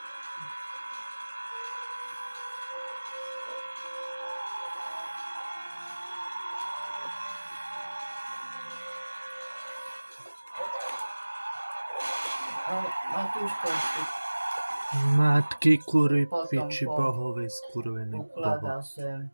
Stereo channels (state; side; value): inverted; both; correlation -1.00